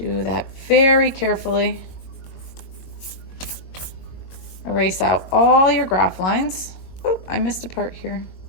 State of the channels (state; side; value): late; right; 22 ms